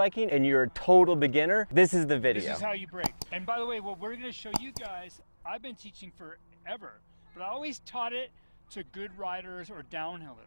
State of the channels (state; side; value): inverted; both; correlation -1.00